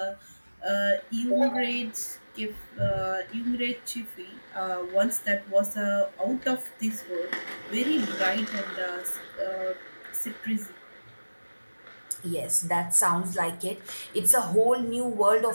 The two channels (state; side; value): inverted; both; correlation -1.00